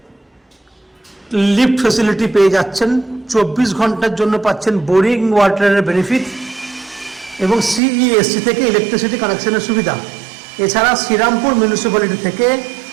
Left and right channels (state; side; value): drops out; left; at 7.8 s